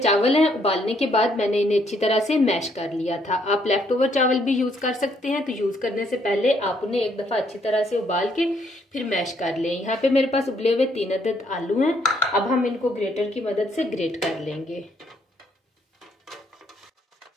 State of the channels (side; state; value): both; normal; correlation 0.70